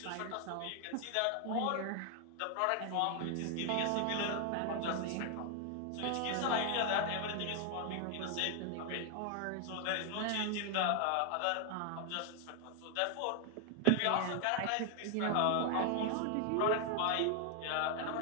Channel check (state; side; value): different; both; correlation 0.00